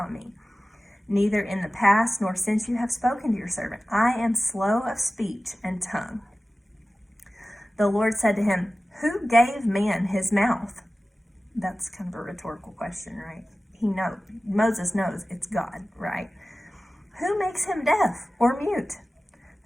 me. Neither in the past nor since you have spoken to your servant. I am slow of speech and tongue. The Lord said to him, who gave man his mouth? That's kind of a rhetorical question, right? Moses knows it's God, right? Who makes him deaf or mute?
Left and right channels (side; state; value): both; normal; correlation 0.96